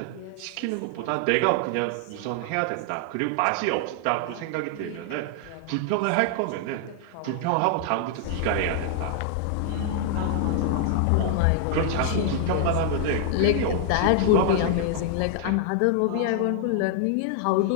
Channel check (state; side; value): different; both; correlation 0.00